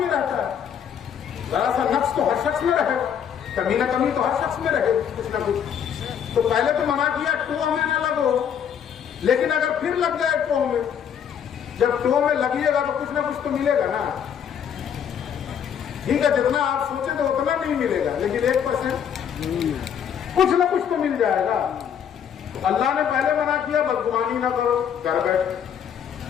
رہتا ہے، ذرا سا نقص تو ہر شخص میں رہے گا، کمی نہ کمی تو ہر شخص میں رہے کچھ نہ کچھ۔ تو پہلے تو منع کیا ٹو میں نہ لگو، لیکن اگر پھر لگ جائے ٹو میں، جب ٹو میں لگیے گا تو کچھ نہ کچھ تو ملے گا نا، ٹھیک ہے، جتنا آپ سوچے تو اتنا نہیں ملے گا، لیکن 1% کچھ نہ کچھ تو مل جائے گا۔ اللہ نے پہلے منع کیا بدگمانی نہ کرو، گھر بیٹھ،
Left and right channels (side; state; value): right; quieter; 8.4 dB